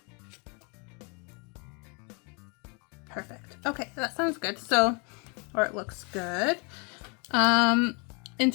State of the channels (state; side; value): quieter; right; 33.6 dB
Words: Perfect. Okay, that sounds good. So, or it looks good. In